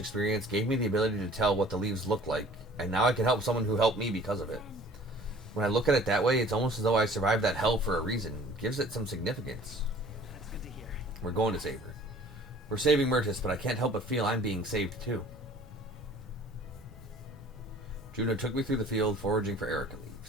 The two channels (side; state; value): both; normal; correlation 0.50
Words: gave me the ability to tell what the leaves look like. And now I can help someone who helped me because of it. When I look at it that way, it's almost as though I survived that hell for a reason. Gives it some significance. That's good to hear. We're going to save her. We're saving Murtis, but I can't help but feel I'm being saved too. Juno took me through the field foraging for Erica